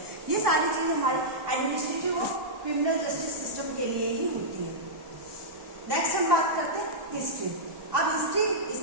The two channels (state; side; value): late; left; 1.1 ms